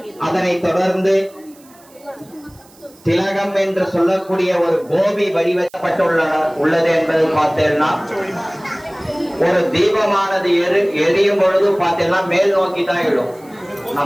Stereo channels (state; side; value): noise; right; hiss, 27 dB below the sound